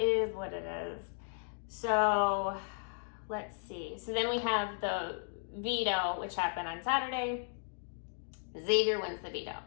is what it is. So let's see. So then we have the veto, which happened on Saturday. Xavier wins the veto,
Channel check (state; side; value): silent; right; digital silence